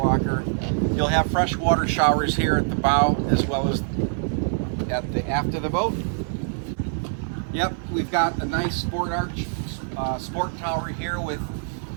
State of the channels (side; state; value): left; silent; 58 dB below the other